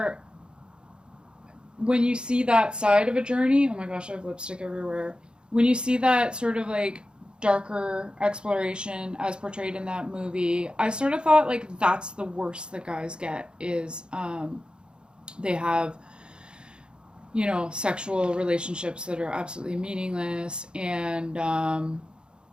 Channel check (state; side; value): late; left; 0.051 ms